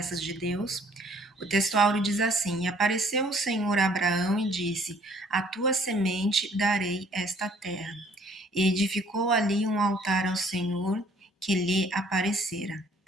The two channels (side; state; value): both; normal; correlation 0.59